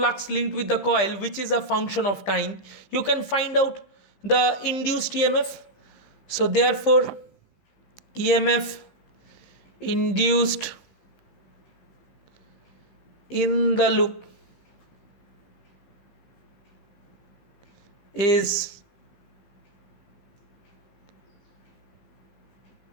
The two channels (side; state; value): right; late; 15 ms